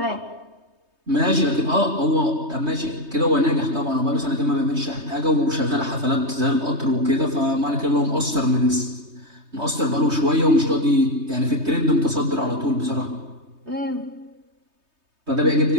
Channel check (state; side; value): late; left; 3.2 ms